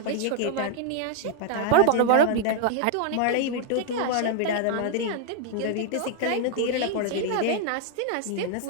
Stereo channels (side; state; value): both; different; correlation 0.00